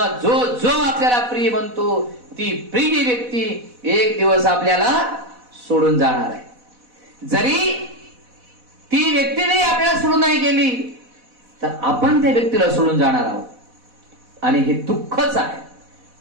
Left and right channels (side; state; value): left; late; 4.1 ms